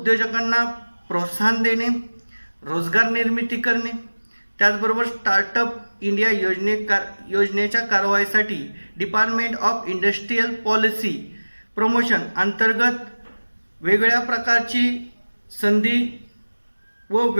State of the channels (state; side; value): inverted; both; correlation -1.00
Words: प्रोत्साहन देणे, रोजगार निर्मिती करणे, त्याचबरोबर स्टार्टअप इंडिया योजनेच्या कारवाईसाठी department of industrial policy promotion अंतर्गत वेगवेगळ्या प्रकारची संधी व